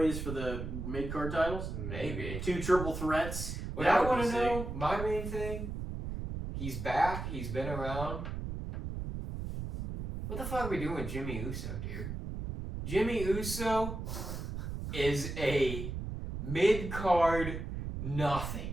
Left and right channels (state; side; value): noise; right; rumble, 5 dB below the sound